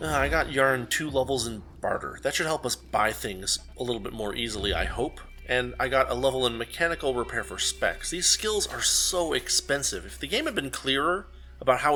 got Yarn 2 levels in Barter. That should help us buy things a little bit more easily, I hope. And I got a level in Mechanical Repair for Specs. These skills are so expensive. If the game had been clearer about how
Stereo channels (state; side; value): identical; both; correlation 1.00